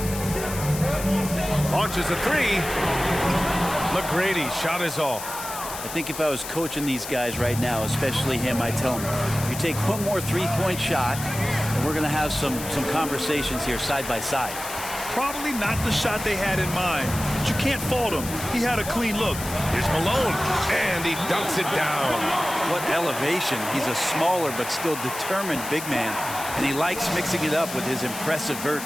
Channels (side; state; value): left; noise; hiss, 9 dB below the sound